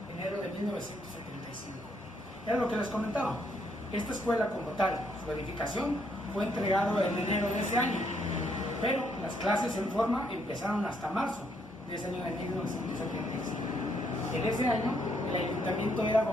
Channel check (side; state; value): both; normal; correlation 0.72